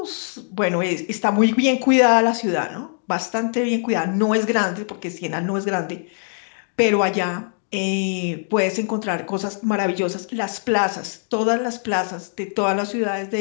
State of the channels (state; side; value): silent; right; 62 dB below the other